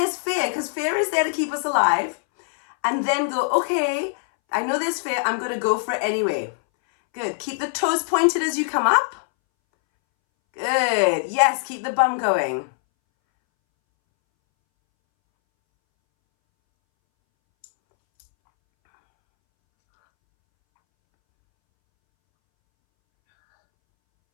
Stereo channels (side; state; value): right; silent; 63 dB below the other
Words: fear, because fear is there to keep us alive. And then go, okay, I know there's fear. I'm going to go for it anyway. Good. Keep the toes pointed as you come up. Good. Yes, keep the bum going.